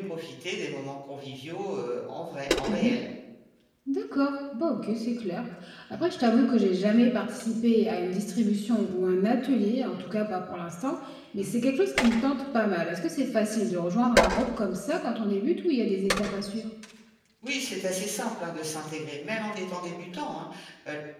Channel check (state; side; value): identical; both; correlation 1.00